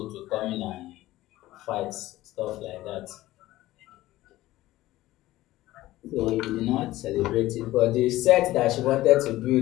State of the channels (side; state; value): right; quieter; 16.5 dB